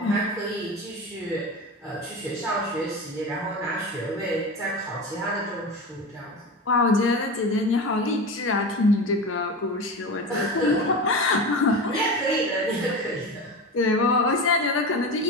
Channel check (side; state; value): both; normal; correlation 0.26